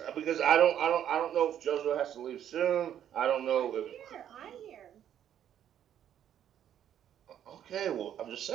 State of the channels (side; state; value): left; quieter; 10.1 dB